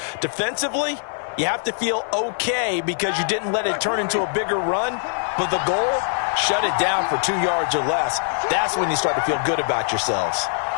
Defensively, You have to feel okay because you didn't let it turn into a bigger run, but the goal, shut it down for 2 yards or less. That's when you start to feel good about yourselves.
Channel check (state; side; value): silent; right; digital silence